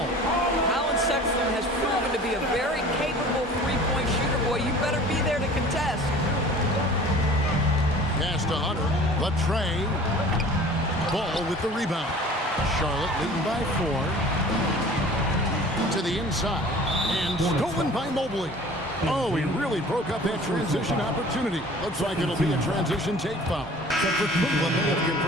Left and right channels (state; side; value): normal; both; correlation 0.45